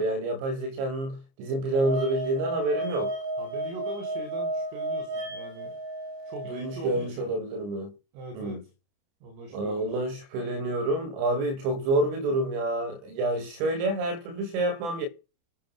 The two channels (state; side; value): late; left; 30 ms